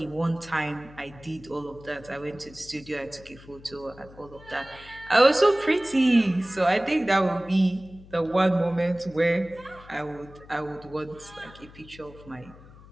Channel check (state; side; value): noise; left; hum, 21 dB below the sound